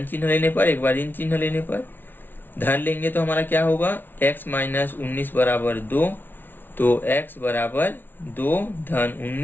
चिन्ह लेने पर एक बार ऋण चिन्ह लेने पर। धन लेंगे तो हमारा क्या होगा, x माइनस 19 बराबर 2, तो x बराबर 2 धन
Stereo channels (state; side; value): late; right; 0.095 ms